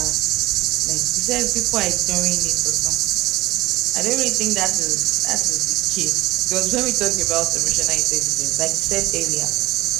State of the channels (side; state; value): left; quieter; 18.8 dB